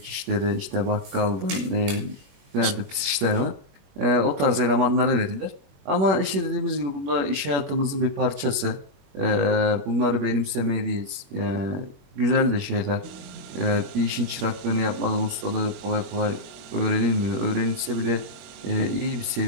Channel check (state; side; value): late; left; 21 ms